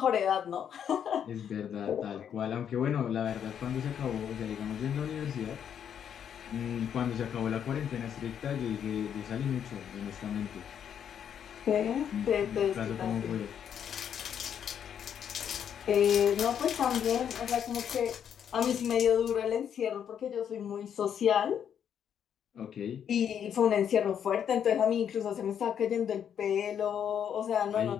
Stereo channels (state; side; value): quieter; right; 8.7 dB